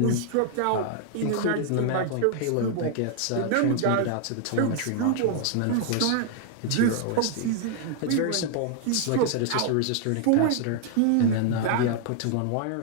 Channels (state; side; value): different; both; correlation 0.00